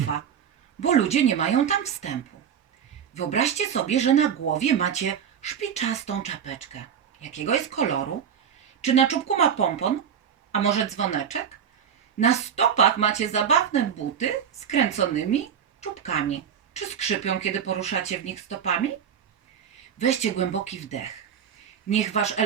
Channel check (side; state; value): left; quieter; 8.2 dB